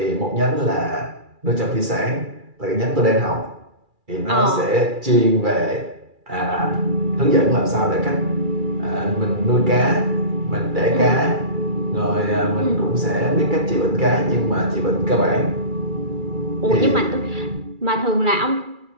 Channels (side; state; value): left; late; 2.3 ms